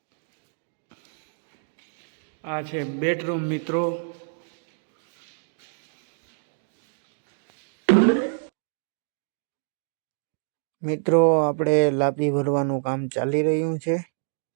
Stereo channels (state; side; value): silent; left; digital silence